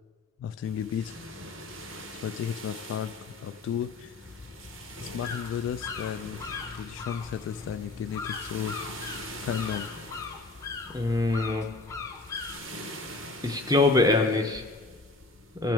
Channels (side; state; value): right; quieter; 3.5 dB